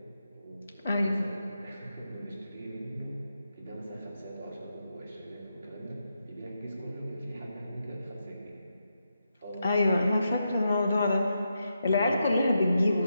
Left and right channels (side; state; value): both; inverted; correlation -0.85